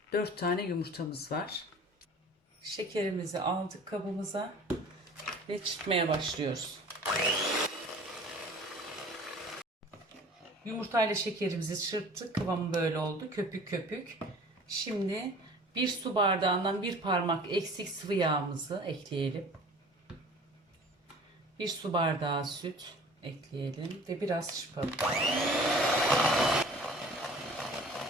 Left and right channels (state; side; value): normal; both; correlation 0.46